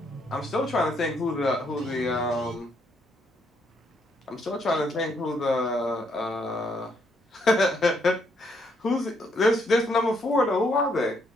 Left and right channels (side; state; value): both; normal; correlation 0.73